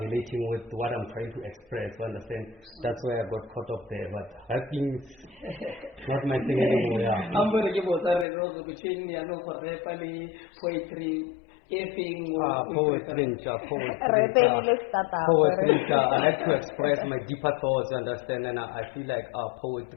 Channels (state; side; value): drops out; right; at 8.2 s